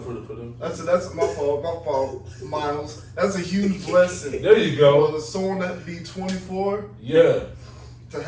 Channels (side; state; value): both; identical; correlation 1.00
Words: them. That's my fault, Miles. That's a huge blessing. There you go. For someone that be 24, Yeah. to